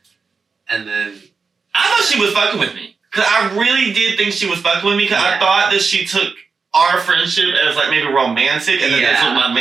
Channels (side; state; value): left; quieter; 4.9 dB